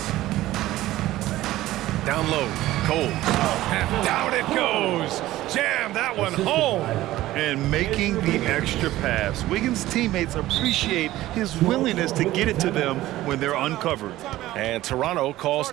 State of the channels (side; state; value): left; quieter; 15.7 dB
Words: Down low. Coles. And down it goes. Jam that one home. And making the extra pass. Wiggins' teammates appreciate his willingness to get it to them when they're uncovered. And Toronto calls